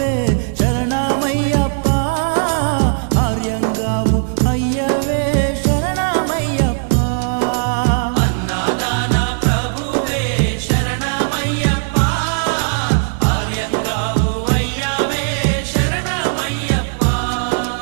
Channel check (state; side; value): silent; left; digital silence